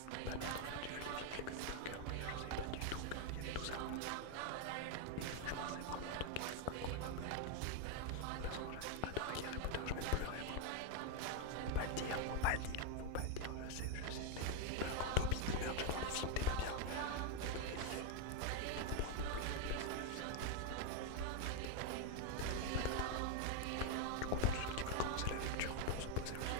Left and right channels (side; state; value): both; different; correlation 0.01